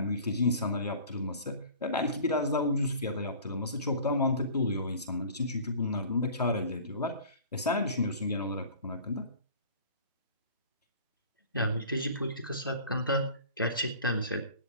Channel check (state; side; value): inverted; both; correlation -0.44